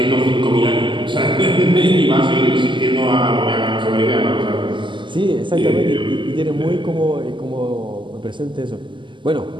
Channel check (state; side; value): late; left; 0.24 ms